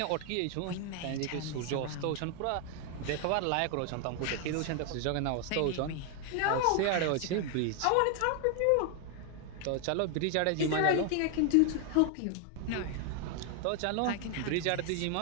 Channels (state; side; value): different; both; correlation 0.00